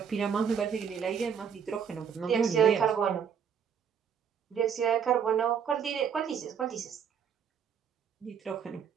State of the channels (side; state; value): left; quieter; 7.4 dB